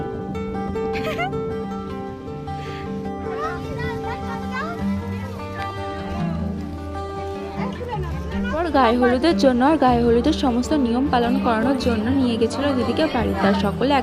গায়ে হলুদের জন্য আর গায়ে হলুদের সমস্ত নিয়ম পালন করানোর জন্য নিয়ে গেছিল দিদিকে বাড়িতে। আর সকলে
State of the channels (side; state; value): both; identical; correlation 1.00